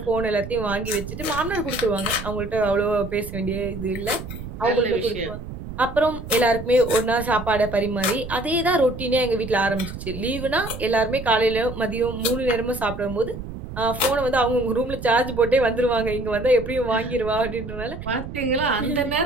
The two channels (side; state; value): right; noise; rumble, 10 dB below the sound